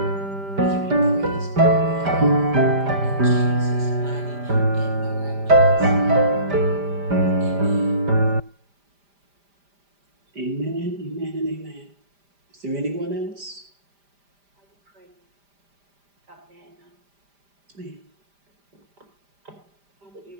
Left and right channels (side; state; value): left; late; 5.0 ms